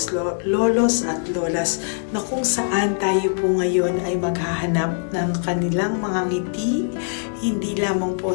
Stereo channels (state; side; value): silent; right; digital silence